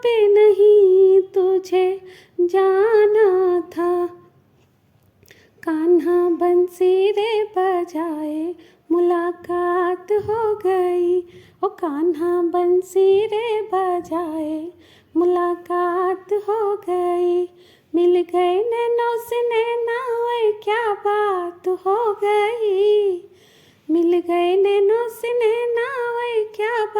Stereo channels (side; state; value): both; identical; correlation 1.00